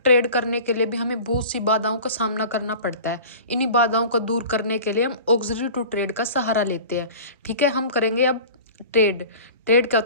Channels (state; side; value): inverted; both; correlation -0.39